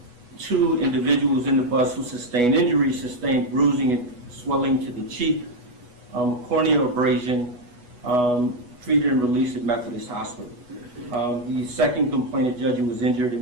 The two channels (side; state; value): left; late; 8.2 ms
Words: 2 individuals in the bus who sustained injuries sustained bruising and swelling to the cheek, corneal abrasion, treated and released at Methodist Hospital. The second complainant, Judge, who was injured